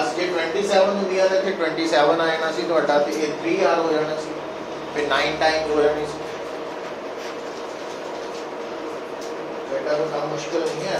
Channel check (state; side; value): identical; both; correlation 1.00